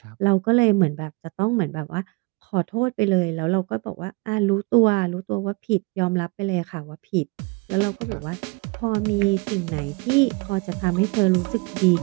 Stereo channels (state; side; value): quieter; left; 27.2 dB